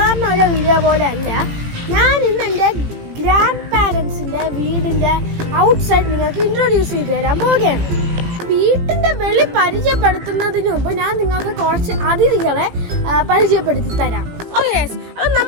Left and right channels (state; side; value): late; left; 18 ms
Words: ഒരു വീഡിയോ പോലെ അല്ല, ഞാൻ ഇന്ന് എൻ്റെ ഗ്രാൻഡ് പാരൻസിൻ്റെ വീടിൻ്റെ ഔട്ട്സൈഡ് നിങ്ങൾക്ക് ഇൻട്രൊഡ്യൂസ് ചെയ്ത് തരാൻ പോവുകയാണ്. വീട്ടിൻ്റെ വെളി പരിചയപ്പെടുത്തുന്നതിന് മുമ്പ് ഞാൻ നിങ്ങൾക്ക് കുറച്ച് അതിഥികളെ പരിചയപ്പെടുത്തി തരാം. ഓക്കെ, അപ്പം